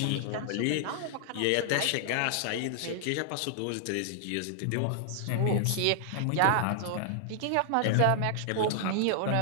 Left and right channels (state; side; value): different; both; correlation -0.01